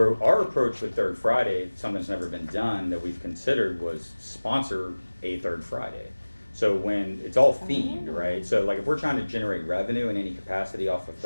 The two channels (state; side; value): inverted; both; correlation -1.00